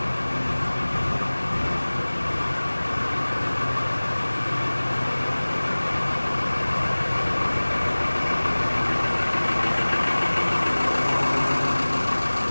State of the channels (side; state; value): both; inverted; correlation -1.00